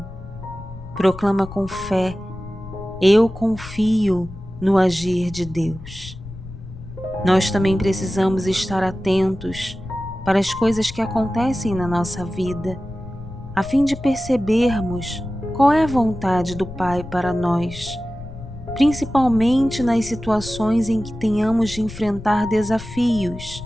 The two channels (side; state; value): left; noise; rumble, 14 dB below the sound